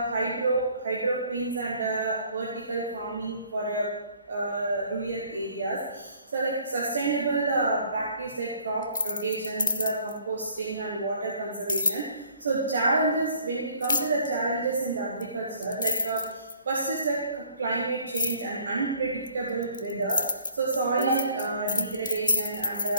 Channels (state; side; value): inverted; both; correlation -0.58